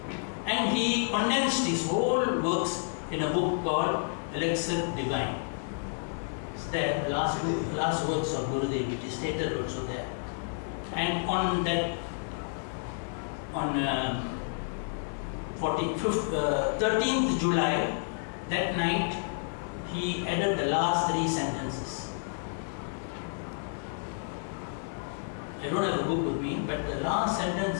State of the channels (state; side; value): silent; right; 58 dB below the other